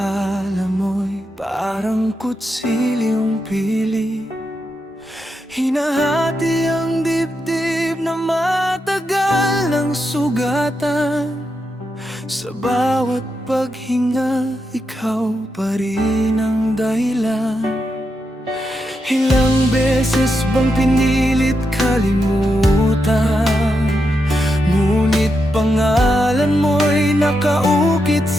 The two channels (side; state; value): both; normal; correlation 0.85